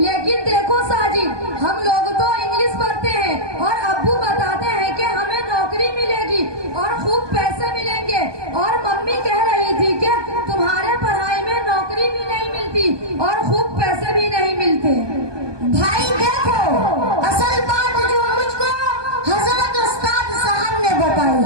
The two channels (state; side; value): late; left; 1.2 ms